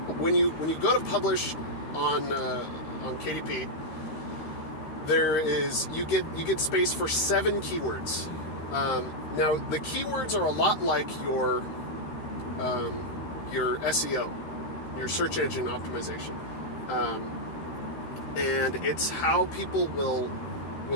When you go to publish on KDP, you get space for 7 keywords. Now, the keywords are a lot like your SEO, your search engine optimization, and it's how people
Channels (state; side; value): late; right; 13 ms